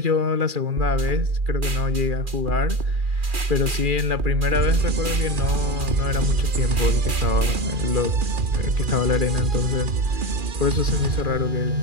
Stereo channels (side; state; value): left; late; 2.4 ms